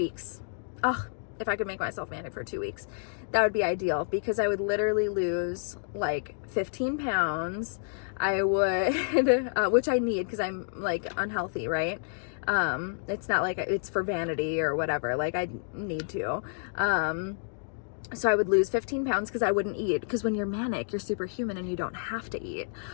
Oh, if I could make myself manic for 2 weeks, that would be ideal, because I would literally lose like 15 pounds. I would, which I need, because I'm like unhealthy, right? It's not like it's for vanity or whatever. Like, I need to. So I would lose 15 pounds because I wouldn't eat. Because when you're manic, you're superhuman and you don't have to eat.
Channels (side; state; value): right; silent; digital silence